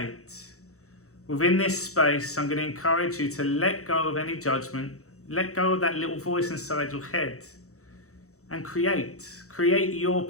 Within this space, I'm going to encourage you to let go of any judgment, let go of that little voice inside your head and create your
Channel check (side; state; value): right; late; 0.64 ms